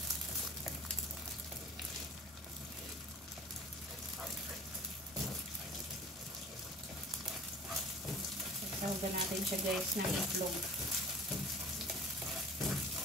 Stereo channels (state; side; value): normal; both; correlation 0.43